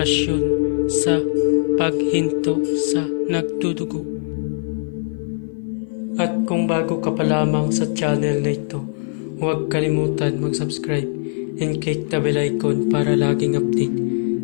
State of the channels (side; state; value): right; silent; 55 dB below the other